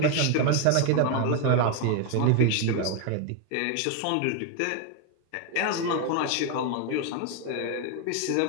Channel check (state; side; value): different; both; correlation 0.01